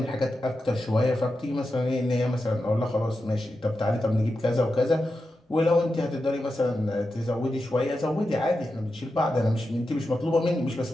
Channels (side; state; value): both; normal; correlation 0.90